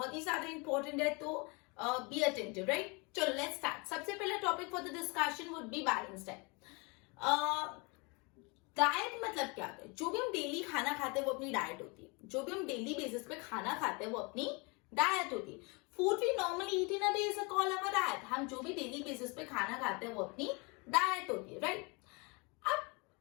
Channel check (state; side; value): quieter; right; 29.7 dB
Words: ही ज्यादा इंपॉर्टेंट है, तो बी अटेंटिव, राइट. चलो लेट्स स्टार्ट. सबसे पहला topic for the discussion would be balance diet. Diet मतलब क्या होता है? जो भी हम डेली खाना खाते हैं वो अपनी डाइट होती है. जो भी हम डेली बेसिस पे खाना खाते हैं वो अपनी डाइट होती है. Food we normally eat in a day is called our diet. हम जो भी डेली बेसिस पे खाना खाते हैं वो अपनी डाइट होती है, राइट.